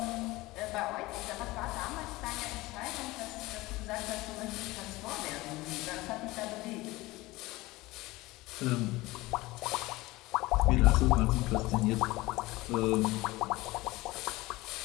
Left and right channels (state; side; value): quieter; right; 20.1 dB